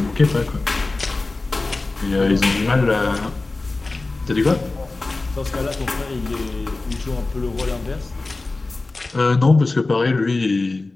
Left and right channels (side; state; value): right; quieter; 3.4 dB